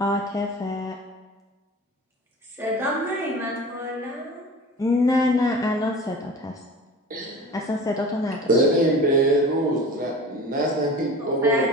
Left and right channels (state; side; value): normal; both; correlation 0.38